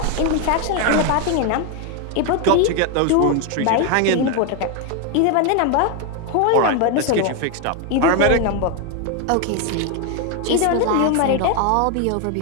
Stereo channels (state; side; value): different; both; correlation 0.01